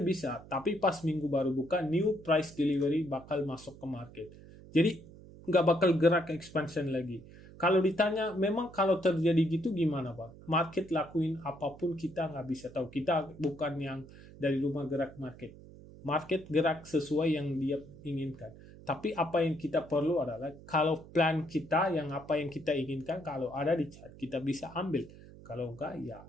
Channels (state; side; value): noise; right; hum, 19 dB below the sound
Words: bisa, tapi pas minggu baru buka, new price delivery bakal masuk ke market. Jadi nggak bakal gerak expansion lagi. Kalau ditanya, memang kalau terjadi gitu gimana Pak? Market lakuin apapun kita nggak bisa tahu. Kita bukan yang dari rumah gerak market. Market gerak sesuai yang dia inginkan. Tapi apa yang kita perlu adalah, kalau plan kita, yang apa yang kita inginkan, kalau ada di chart, kita bisa ambil. Kalau enggak, ya